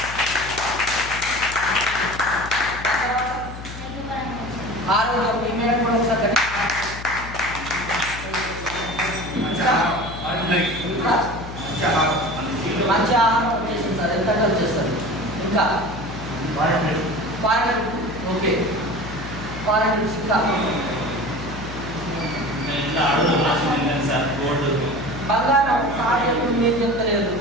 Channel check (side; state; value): left; noise; hum, 12 dB below the sound